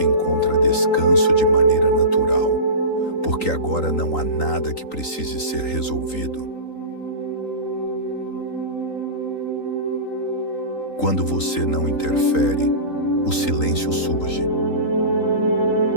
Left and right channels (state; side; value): late; right; 3.9 ms